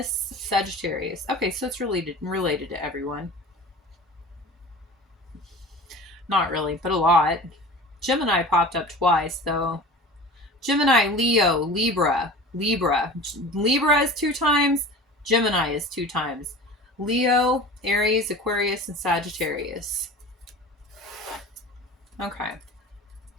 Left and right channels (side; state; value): both; normal; correlation 0.38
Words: Sagittarius. Okay, so it's related to everyone. Not really, but a lot. Gemini popped up twice, though. Gemini, Leo, Libra. Libra is 2 times. Gemini is 2 times. Leo, Aries, Aquarius, and Sagittarius. Okay.